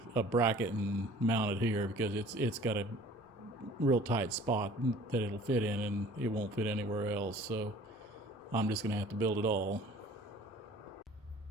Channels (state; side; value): normal; both; correlation 0.49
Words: a bracket and mount it here because it's got a real tight spot that it'll fit in, and it won't fit anywhere else. So I'm just going to have to build it all.